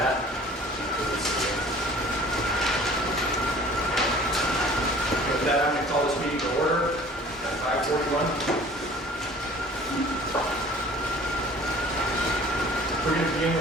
I'm going to call this meeting to order at 5:41. We're going to begin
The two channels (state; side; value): normal; both; correlation 0.49